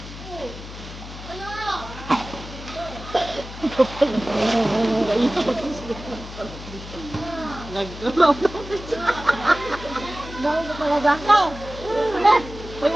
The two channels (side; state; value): left; noise; hum, 13 dB below the sound